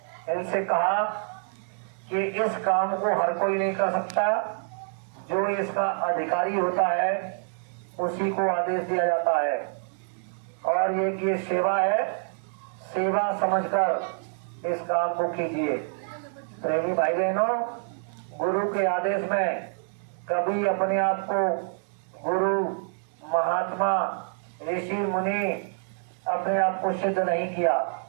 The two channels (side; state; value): left; silent; 58 dB below the other